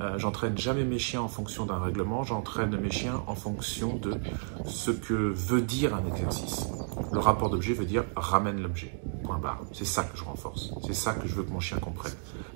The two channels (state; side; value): silent; left; digital silence